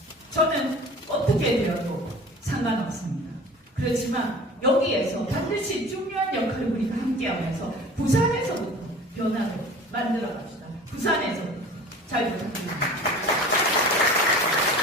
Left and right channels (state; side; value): normal; both; correlation 0.41